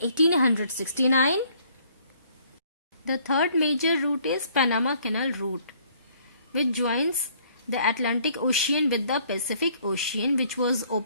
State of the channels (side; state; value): both; inverted; correlation -0.62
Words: The third major route is Panama Canal route, which joins the Atlantic Ocean with the Pacific Ocean, which was